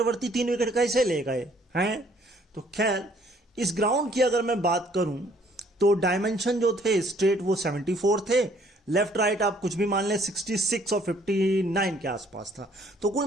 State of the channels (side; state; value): both; normal; correlation 0.61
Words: 3 विकेट कैसे ले गए हैं। तो खैर इस ग्राउंड की अगर मैं बात करूं तो डायमेंशन जो थे स्ट्रेट वो 74 थे, लेफ्ट राइट आप कुछ भी मान लें 66 और 59 के आसपास था। तो कुल